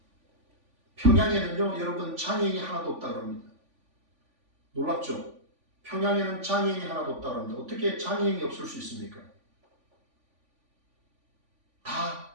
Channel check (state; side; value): late; left; 3.5 ms